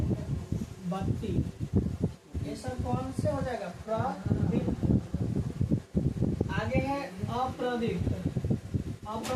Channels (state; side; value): identical; both; correlation 1.00